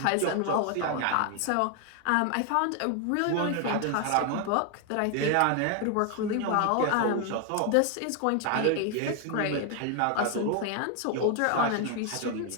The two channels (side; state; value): both; different; correlation 0.01